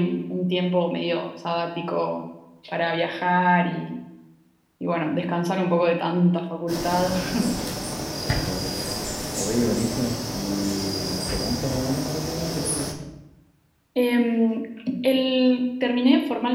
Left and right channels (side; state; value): both; identical; correlation 1.00